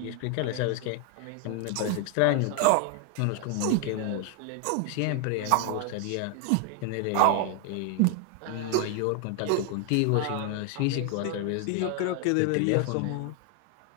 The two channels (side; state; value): both; different; correlation 0.00